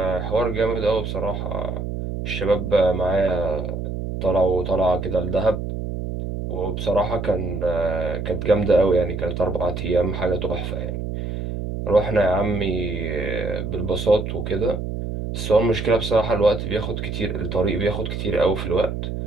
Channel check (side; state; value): right; noise; hum, 5 dB below the sound